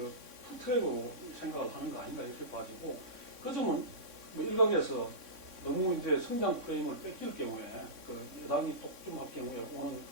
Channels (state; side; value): late; left; 3.6 ms